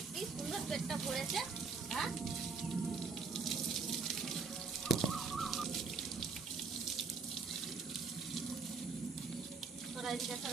কি সুন্দর পেটটা ভরেছে। হ্যাঁ সরা এদিকে,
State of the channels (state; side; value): quieter; left; 5.0 dB